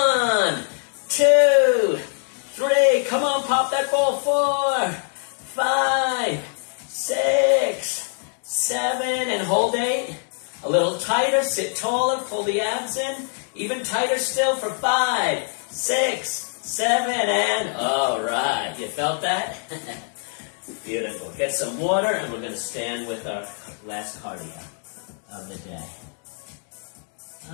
2, 3. Come on, pop that ball. 4, 5, 6, 7 and hold 8. A little tighter. Sit taller. Pull the abs in. Even tighter still for 5, 6, 7 and all right. You felt that? Beautiful. Get some water and we're going to stand with our last cardio of the day.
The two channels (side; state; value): right; silent; 55 dB below the other